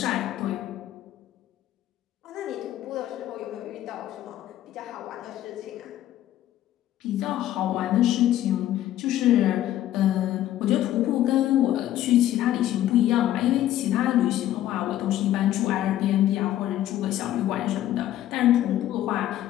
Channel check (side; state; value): right; quieter; 12.9 dB